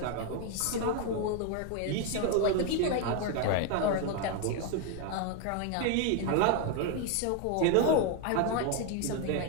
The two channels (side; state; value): both; different; correlation 0.01